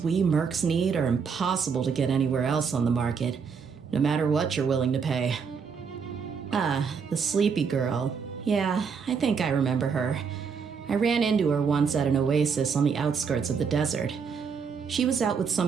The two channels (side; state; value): left; quieter; 6.0 dB